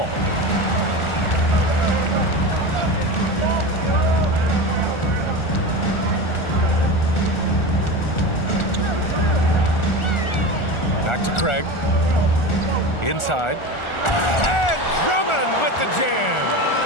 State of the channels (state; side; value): late; right; 1.4 ms